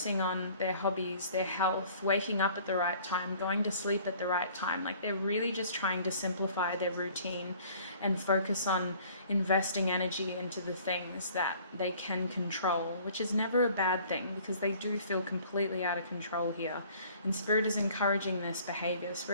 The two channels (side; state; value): both; inverted; correlation -0.53